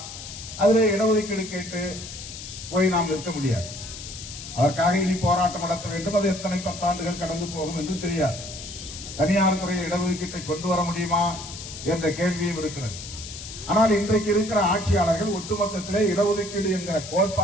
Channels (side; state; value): left; noise; hiss, 11 dB below the sound